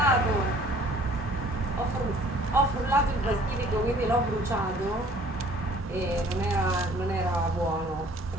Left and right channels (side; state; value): both; normal; correlation 0.54